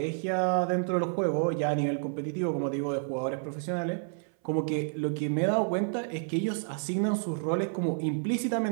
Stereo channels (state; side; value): silent; left; 58 dB below the other